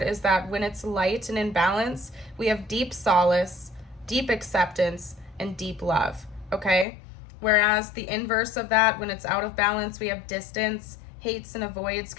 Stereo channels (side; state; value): right; drops out; at 6.9 s